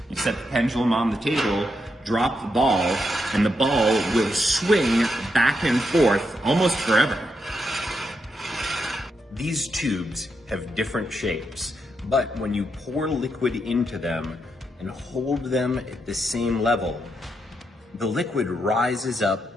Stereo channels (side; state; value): both; normal; correlation 0.82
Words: You set the pendulum on the table, drop the ball, and the ball will swing back and forth almost forever. These tubes have different shapes, but when you pour liquid into them and hold them at the same level, the liquid rises up